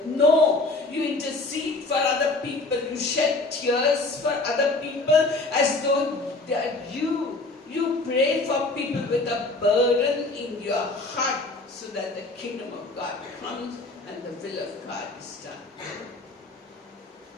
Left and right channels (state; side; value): quieter; right; 3.1 dB